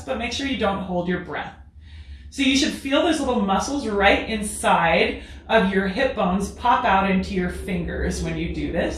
but make sure you don't hold your breath. So you should feel those little muscles right inside of your hip bones pop out into your fingers when you do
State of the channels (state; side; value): identical; both; correlation 1.00